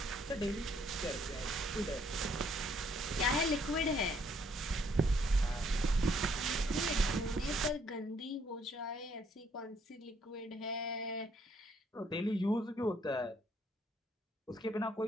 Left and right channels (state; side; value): normal; both; correlation 0.67